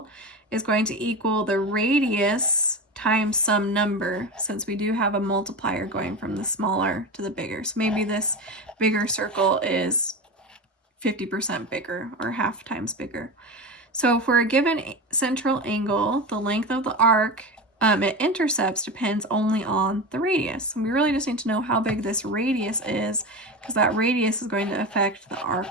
is going to equal the radius times some number, since we do have a multiplier going from the smaller to the bigger. So maybe this bigger circle is 50% bigger or half times bigger. So for a given central angle, the length of the arc it intercepts depends only on the radius. And we really just need to know how big this radius is, because that radius is going to affect the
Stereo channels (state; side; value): normal; both; correlation 0.23